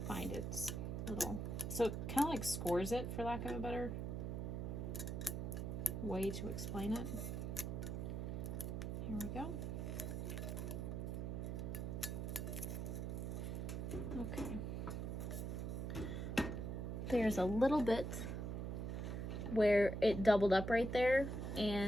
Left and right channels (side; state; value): right; noise; hum, 3 dB below the sound